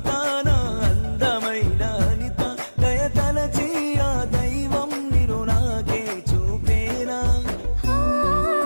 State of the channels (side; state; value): both; inverted; correlation -1.00